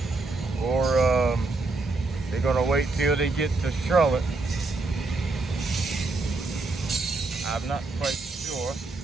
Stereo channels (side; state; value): left; quieter; 3.4 dB